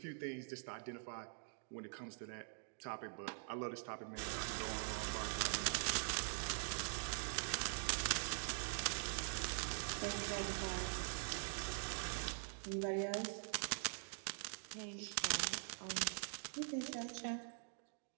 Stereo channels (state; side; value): silent; left; digital silence